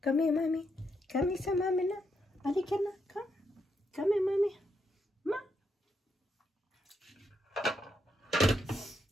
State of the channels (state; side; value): normal; both; correlation 0.79